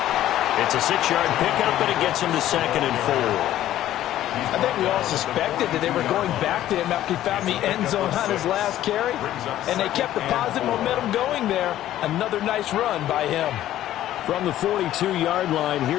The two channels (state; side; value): quieter; right; 13.1 dB